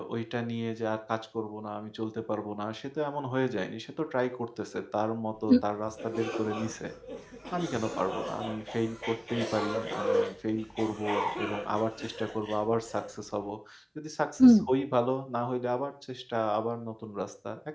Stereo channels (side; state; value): both; identical; correlation 1.00